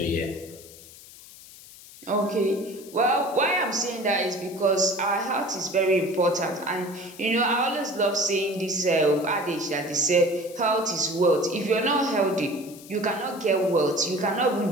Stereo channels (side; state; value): left; noise; hiss, 19 dB below the sound